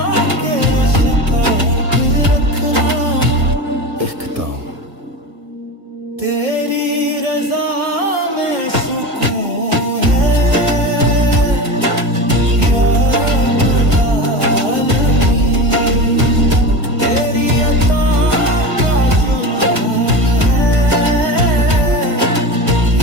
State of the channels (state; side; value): late; left; 1.7 ms